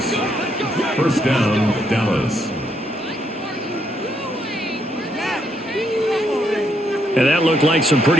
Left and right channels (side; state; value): both; normal; correlation 0.75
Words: First down, Dallas. And that looked like some